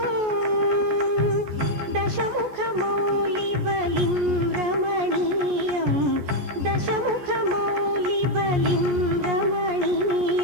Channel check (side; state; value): left; late; 14 ms